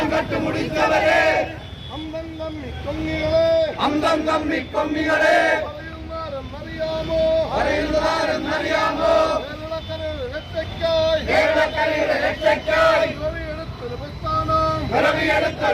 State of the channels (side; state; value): both; identical; correlation 1.00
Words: കട്ടുമുടിച്ചവരെ അന്തം തമ്മി കൊമ്മികളെ അറിയുന്നതാരെന്നറിയാമോ? കേരളക്കരയുടെ രക്ഷയ്ക്കായി